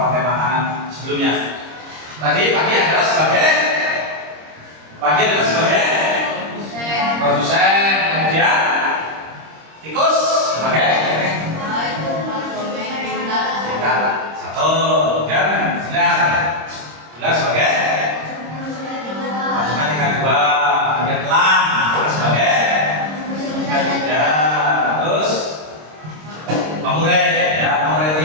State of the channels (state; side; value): late; left; 26 ms